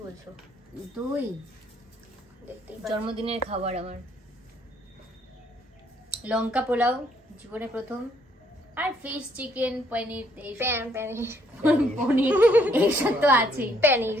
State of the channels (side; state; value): both; normal; correlation 0.68